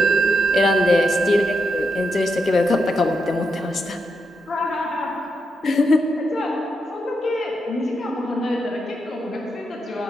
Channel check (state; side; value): normal; both; correlation 0.82